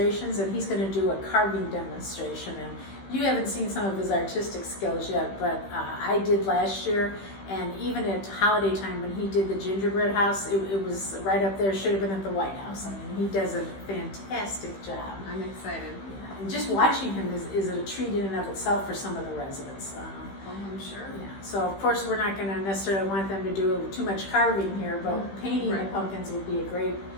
and he's going to do a carving demonstration. And you haven't seen some of his artistic skills yet, but I did last year. And even at holiday time when he did the gingerbread house, it was right up there, should have been at the White House. I mean, he does a fantastic job. I'm excited. Yeah. And just watching him is a treat in and of itself for some of the residents. Oh, I'm sure. Yeah. So of course we're not going to necessarily want them to do too much carving here, but painting the pumpkins would be a great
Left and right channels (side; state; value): right; late; 15 ms